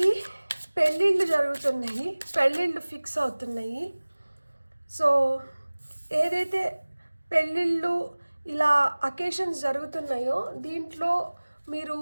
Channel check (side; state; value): both; inverted; correlation -1.00